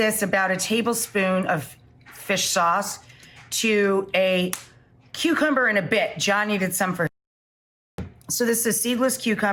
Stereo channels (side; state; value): both; identical; correlation 1.00